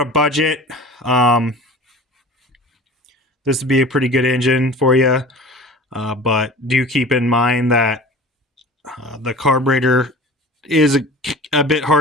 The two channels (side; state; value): both; normal; correlation 0.40